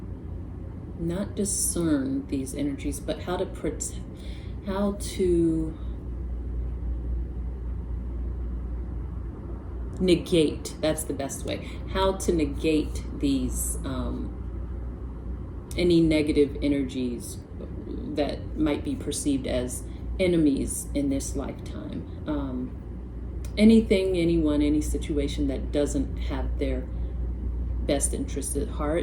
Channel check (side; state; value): both; identical; correlation 1.00